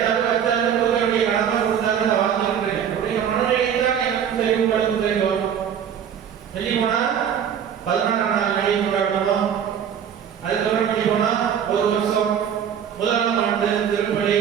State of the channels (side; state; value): left; quieter; 8.5 dB